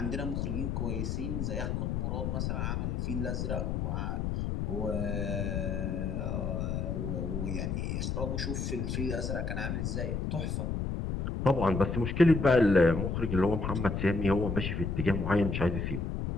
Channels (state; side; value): noise; left; rumble, 1 dB below the sound